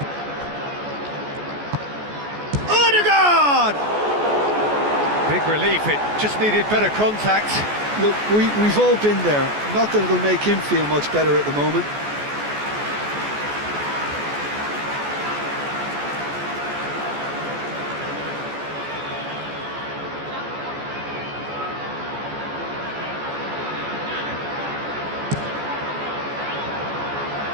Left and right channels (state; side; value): late; left; 14 ms